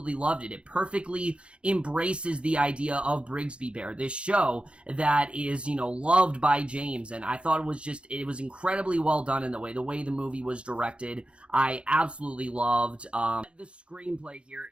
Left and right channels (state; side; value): late; left; 0.058 ms